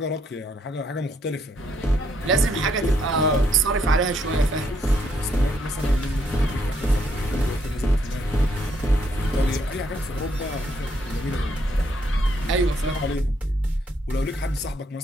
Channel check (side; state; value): both; normal; correlation 0.72